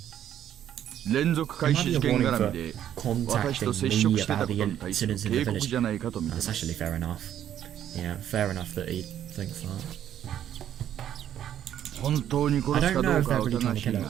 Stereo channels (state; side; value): quieter; left; 10.6 dB